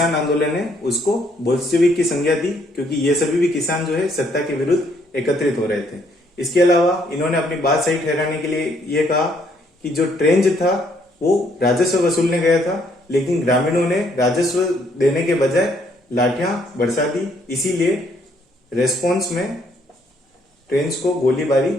आंदोलन है उसको बोल्शेविक की संज्ञा दी, क्योंकि ये सभी भी किसान जो है सत्ता के विरुद्ध एकत्रित हो रहे थे। इसके अलावा इन्होंने अपनी बात सही ठहराने के लिए ये कहा कि जो ट्रेंच था वो राजस्व वसूलने गया था, लेकिन ग्रामीणों ने राजस्व देने के बजाय लाठियां बरसा दी। इसीलिए रेस्पॉन्स में ट्रेन्स को गोलीबारी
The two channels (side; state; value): both; normal; correlation 0.68